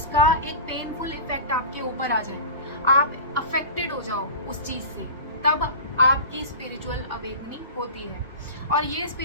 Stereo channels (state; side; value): inverted; both; correlation -0.33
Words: एक पेनफुल इफेक्ट आपके ऊपर आ जाए, आप अफेक्टेड हो जाओ उस चीज से, तब आपकी स्पिरिचुअल अवेकनिंग होती है। और ये